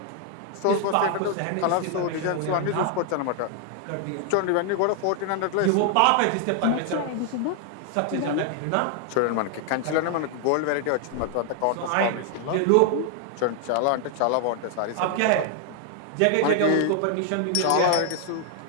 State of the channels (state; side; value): different; both; correlation 0.00